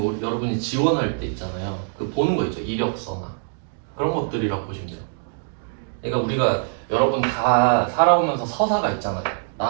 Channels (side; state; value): left; silent; digital silence